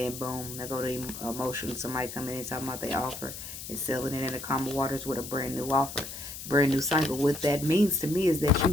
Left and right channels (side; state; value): left; noise; hiss, 10 dB below the sound